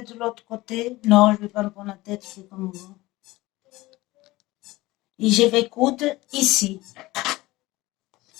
de l'autre côté. Non, je ne vais pas me prendre la tête, je fais comme vous. Et je vais coudre ici.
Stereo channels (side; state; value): right; quieter; 19.3 dB